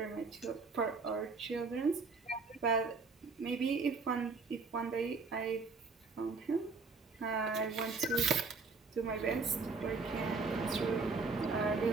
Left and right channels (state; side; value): quieter; left; 4.3 dB